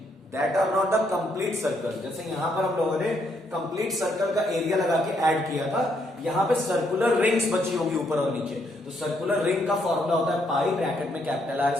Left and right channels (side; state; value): both; normal; correlation 0.74